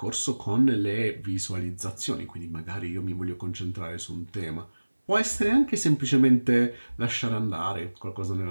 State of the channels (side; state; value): both; inverted; correlation -1.00